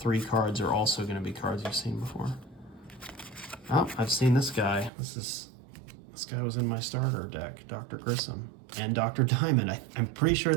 cards are also going to be cards you've seen before. Oh, I've seen this guy. This guy was in my starter deck, Dr. Grissom and Dr. Diamond. I'm pretty sure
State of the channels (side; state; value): left; drops out; at 4.9 s